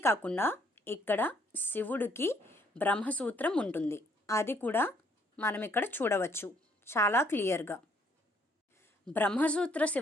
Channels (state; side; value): normal; both; correlation 0.66